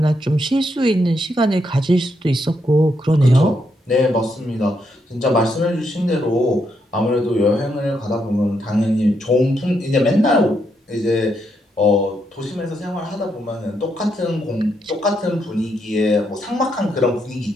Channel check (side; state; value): both; normal; correlation 0.78